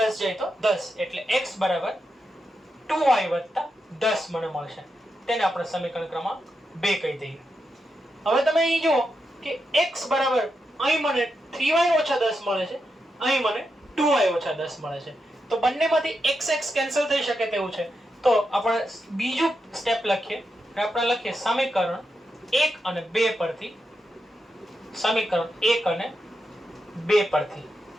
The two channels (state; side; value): normal; both; correlation 0.86